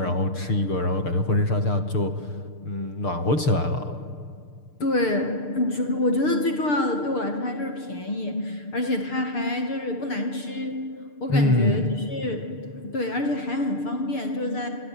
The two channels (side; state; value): right; late; 6.7 ms